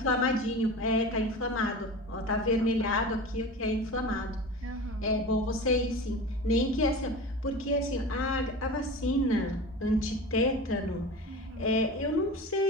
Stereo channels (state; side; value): normal; both; correlation 0.32